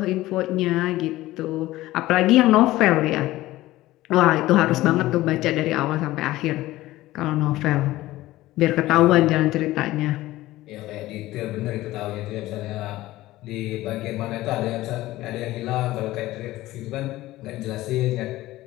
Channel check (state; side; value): quieter; right; 16.8 dB